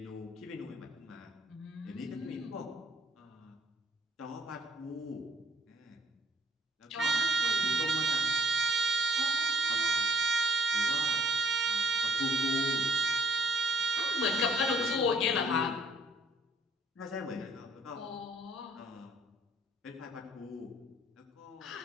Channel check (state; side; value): normal; both; correlation 0.61